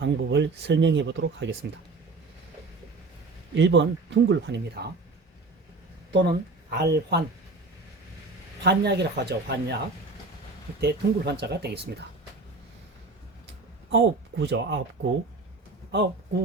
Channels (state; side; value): quieter; left; 3.5 dB